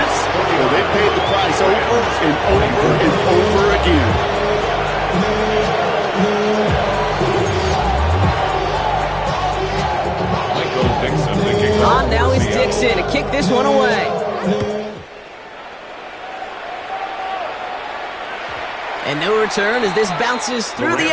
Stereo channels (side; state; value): both; identical; correlation 1.00